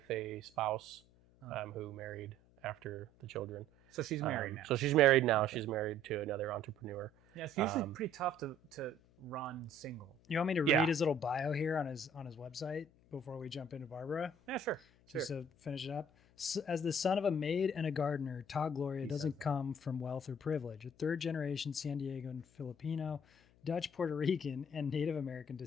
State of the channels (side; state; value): left; noise; hum, 29 dB below the sound